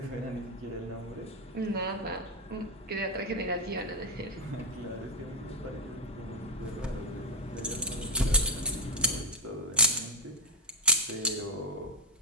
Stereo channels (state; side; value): normal; both; correlation 0.04